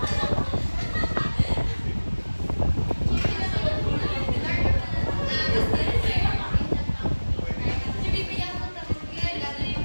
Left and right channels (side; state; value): both; inverted; correlation -1.00